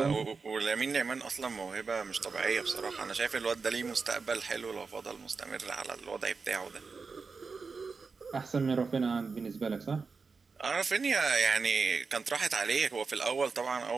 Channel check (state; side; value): quieter; left; 4.7 dB